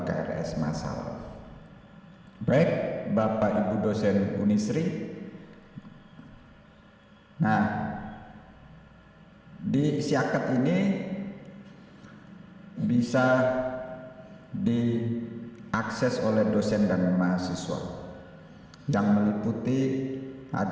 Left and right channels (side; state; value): both; identical; correlation 1.00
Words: KRS massal. Baik, Bapak Ibu dosen Unisri. Nah, di Siakat ini bisa diakses oleh dosen dan mahasiswa yang meliputi